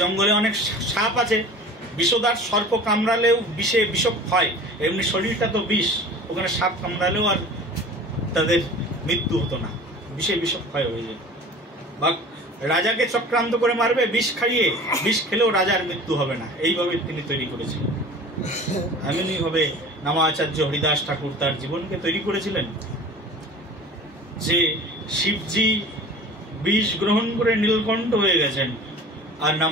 জঙ্গলে অনেক সাপ আছে, বিষধর সর্প কামড়ালেও বিষে বিষক্ষয়, এমনি শরীরটা তো বিষ, ওখানে সাপ কামড়ালেও আর তাদের মৃত্যু হতো না, বিষে বিষক্ষয় হয়ে যেত। বা রাজাকে চক্রান্ত করে মারবে বিষ খাইয়ে, বিষ খেলেও রাজার মৃত্যু হবে না, এইভাবে তিনি তৈরি করেছিলেন। এমনি ভাবে নামাচার্য হরিদাস ঠাকুর তার জীবনকে তৈরি করেছিলেন যে শিবজি বিষ গ্রহণ করে নীলকণ্ঠ হয়ে গেছেন, আর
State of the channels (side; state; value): both; normal; correlation 0.41